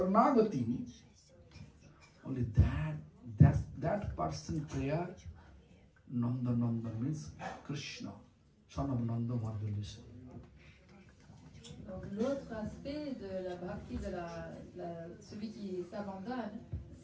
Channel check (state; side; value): identical; both; correlation 1.00